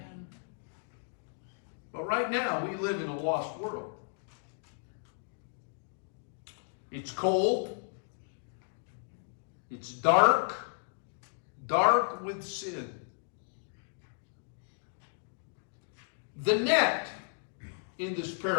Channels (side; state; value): right; silent; digital silence